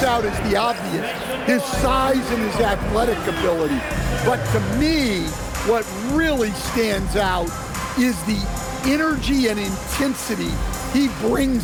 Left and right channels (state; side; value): identical; both; correlation 1.00